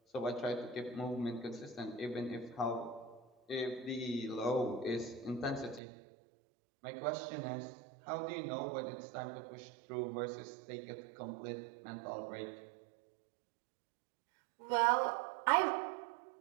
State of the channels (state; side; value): drops out; left; at 5.8 s